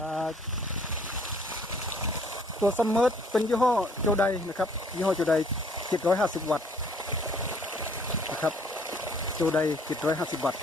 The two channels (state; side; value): normal; both; correlation 0.60